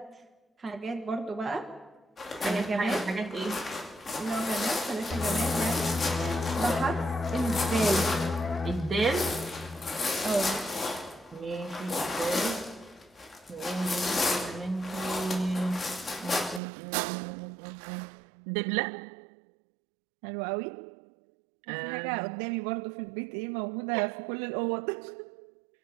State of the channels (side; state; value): left; drops out; at 16.6 s